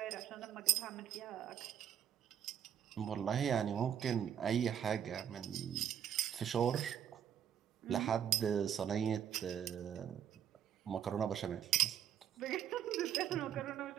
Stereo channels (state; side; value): quieter; left; 9.5 dB